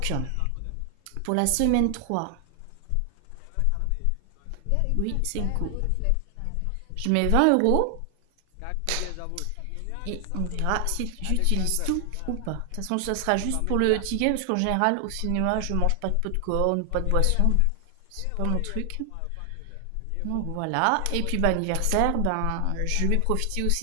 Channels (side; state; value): both; different; correlation 0.00